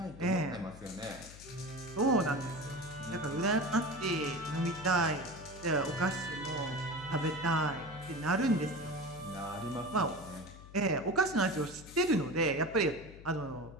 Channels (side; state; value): left; noise; hum, 17 dB below the sound